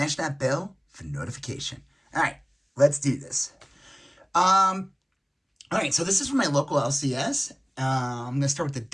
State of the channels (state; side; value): identical; both; correlation 1.00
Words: that bell for notification. Alright. Let's do this. All right, so this is from my local LCS. I'm going to start with the